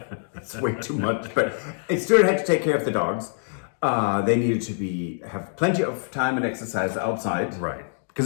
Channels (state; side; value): silent; right; digital silence